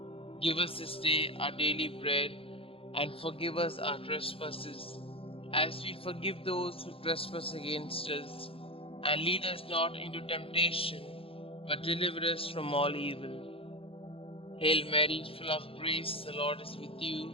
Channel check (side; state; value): right; late; 0.27 ms